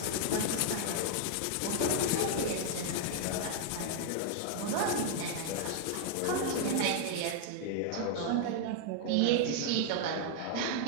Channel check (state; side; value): different; both; correlation 0.00